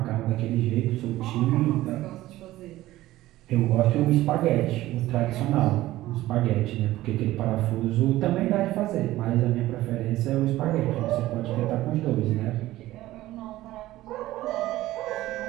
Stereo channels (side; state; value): left; quieter; 16.1 dB